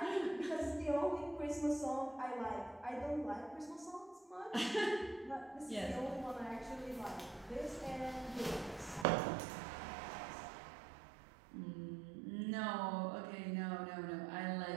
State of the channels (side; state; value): left; drops out; at 9.1 s